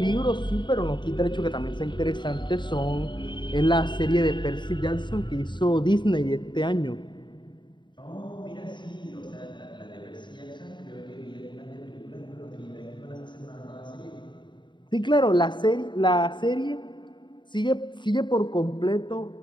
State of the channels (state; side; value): late; right; 0.22 ms